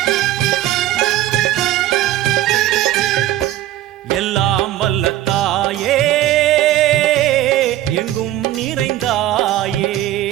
எல்லாம் வல்ல தாயே எங்கும் நிறைந்தாயே,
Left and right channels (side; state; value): left; quieter; 13.9 dB